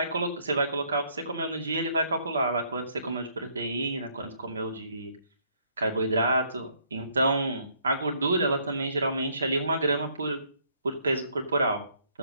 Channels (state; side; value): inverted; both; correlation -0.68